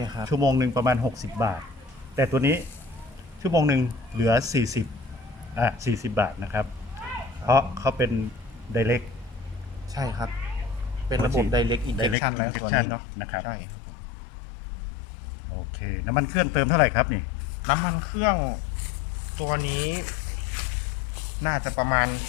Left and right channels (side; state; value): right; drops out; at 12.2 s